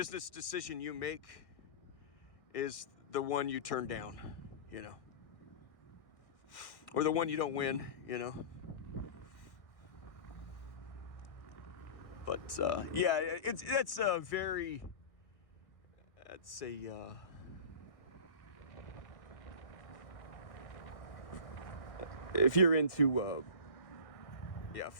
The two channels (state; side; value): late; right; 1.6 ms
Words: decision you make is the one you turn down, you know, or the one you don't win, you know. But yeah, that's a very, that's a if you're into yeah,